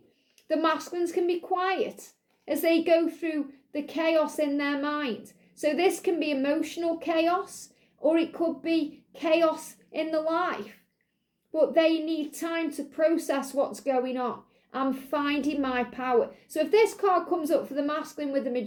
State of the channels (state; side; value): identical; both; correlation 1.00